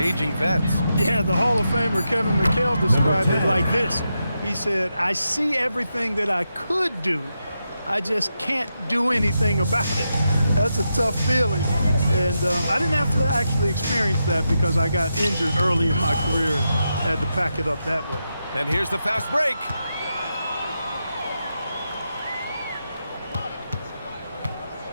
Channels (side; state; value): both; inverted; correlation -0.86